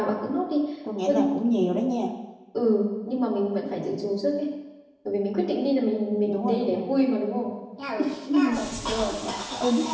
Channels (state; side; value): identical; both; correlation 1.00